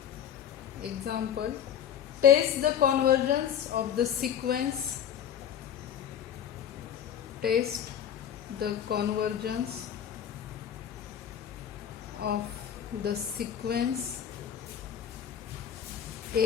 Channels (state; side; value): quieter; right; 9.3 dB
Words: Example, test the convergence of the sequence. Test the convergence of the sequence